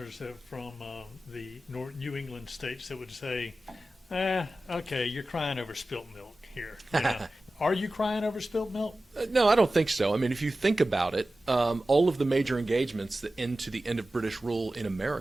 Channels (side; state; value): both; normal; correlation 0.95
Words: from the New England states that would say, okay, you're crying over spilt milk here. Are you crying over spilt milk? No, I don't think so. I mean, if you think about it, all of the major engagements that end to the end of British rule in